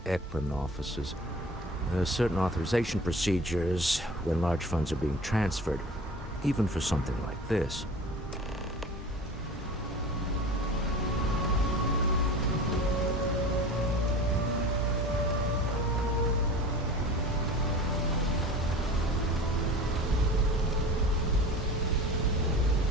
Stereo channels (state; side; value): normal; both; correlation 0.38